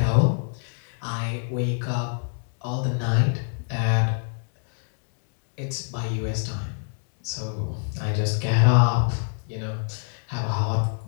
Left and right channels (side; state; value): right; silent; digital silence